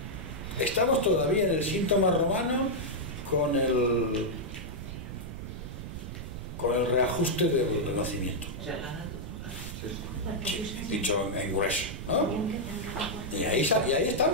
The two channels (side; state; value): right; noise; rumble, 8 dB below the sound